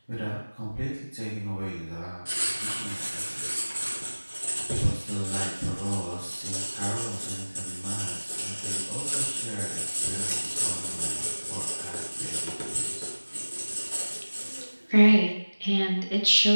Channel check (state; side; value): inverted; both; correlation -1.00